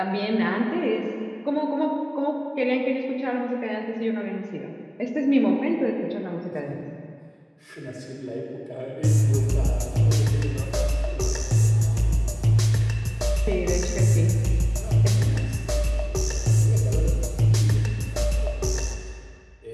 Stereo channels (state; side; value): identical; both; correlation 1.00